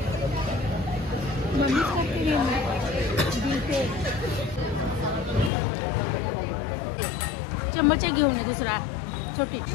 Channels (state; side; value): drops out; right; at 5.5 s